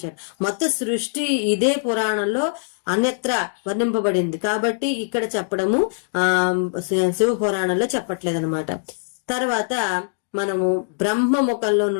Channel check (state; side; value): silent; right; digital silence